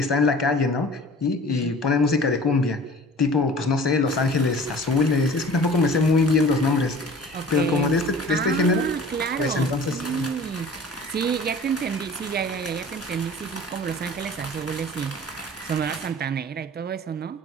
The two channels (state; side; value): normal; both; correlation 0.44